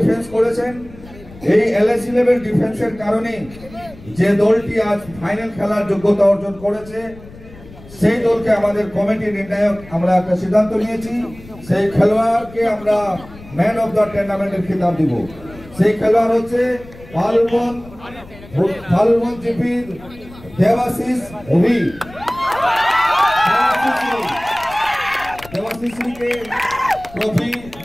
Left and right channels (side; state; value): left; noise; rumble, 20 dB below the sound